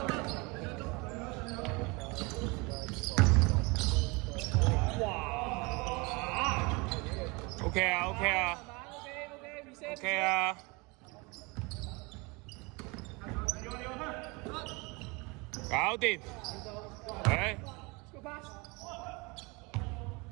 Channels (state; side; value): quieter; left; 27.1 dB